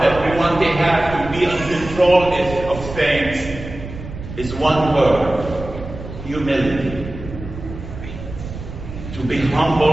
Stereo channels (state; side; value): noise; right; rumble, 11 dB below the sound